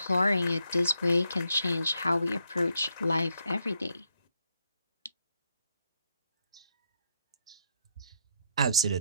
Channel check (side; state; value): both; inverted; correlation -0.77